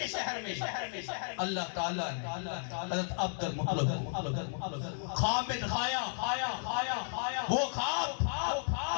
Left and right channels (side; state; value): right; silent; 55 dB below the other